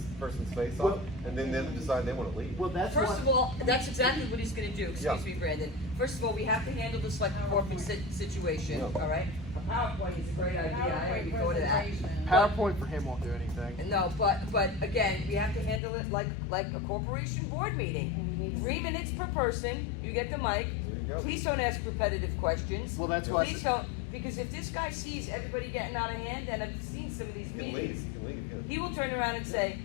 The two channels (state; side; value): drops out; right; at 15.8 s